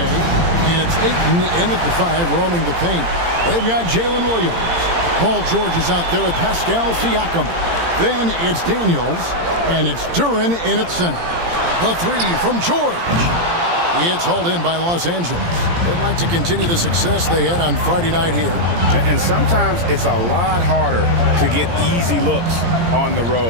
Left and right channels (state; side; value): late; left; 17 ms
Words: it's Ayton in at the 5, roaming the paint. They've got Jalen Williams. Paul George is out there with Pascal Siakam. Then it's Daniels, and it's Duran in at center. The 3 from George. It's hauled in by Los Angeles. They'd like to continue the success they had on Friday night here. And sometimes it's a lot harder to get easy looks on the